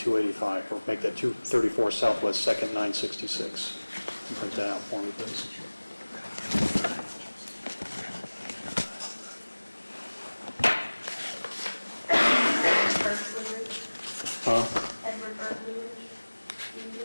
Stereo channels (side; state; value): both; inverted; correlation -1.00